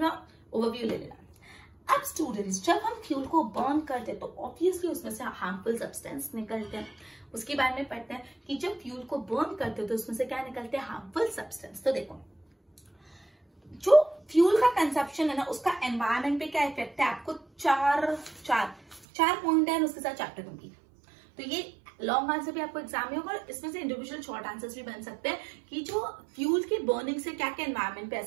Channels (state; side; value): drops out; left; at 19.1 s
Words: ओवरव्यू ले लेना. अब स्टूडेंट्स, जब हम फ्यूल को बर्न करते हैं तो ऑब्वियसली उसमें से हार्मफुल सब्सटेंस निकलते हैं. उसके बारे में पढ़ते हैं कि जब फ्यूल को बर्न करते हो तो उसमें से क्या निकलते हैं, हार्मफुल सब्सटेंस. तो देखो, जो फ्यूल का कंजप्शन है ना, उसका एनवायरमेंट पे क्या इफेक्ट है, आपको चार पॉइंट है उसके साथ चैप्टर कंप्लीट. तो ये लॉन्ग आंसर भी आपको एग्जाम में होगा, और इसमें से इंडिविजुअल शॉर्ट आंसर्स भी बन सकते हैं कि जो फ्यूल की बर्निंग से क्या क्या एनवायरमेंट पे